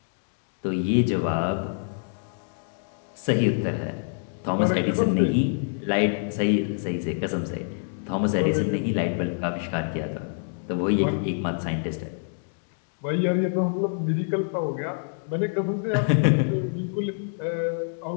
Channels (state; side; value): silent; right; digital silence